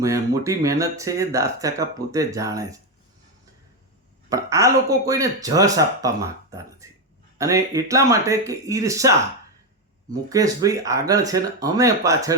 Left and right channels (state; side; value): normal; both; correlation 0.09